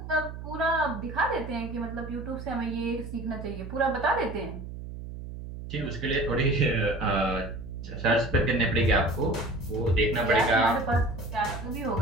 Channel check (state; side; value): noise; right; hum, 10 dB below the sound